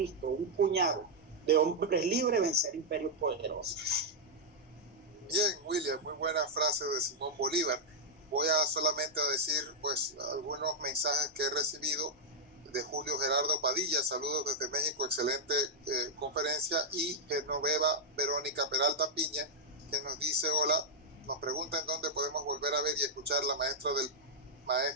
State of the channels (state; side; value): normal; both; correlation -0.04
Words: un puñado de hombres libres vencer imperios poderosos. Bien, William, muy buena frase de Simón Bolívar. Voy a solamente a decir pues algunos mensajes que he recibido de Julio Gerardo Padilla. Saludos desde México, excelente conferencia. Y Genoveva Verónica Peralta Piña, que nos dice: hola, nos pregunta en dónde podemos volver a ver y escuchar la maestra del